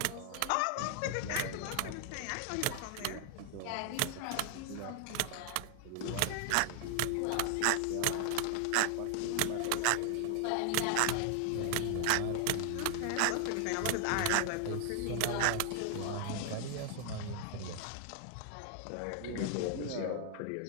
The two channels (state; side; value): different; both; correlation 0.00